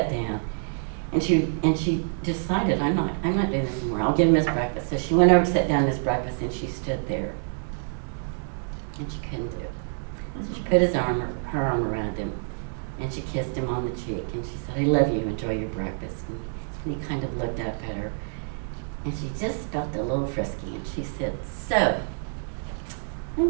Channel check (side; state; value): left; silent; digital silence